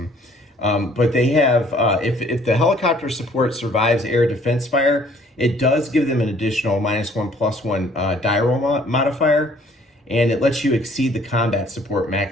But they have, if the helicopter support survives air defense fire, it does give them an additional -1/+1 die roll modifier, and it lets you exceed the combat support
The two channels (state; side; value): normal; both; correlation 0.59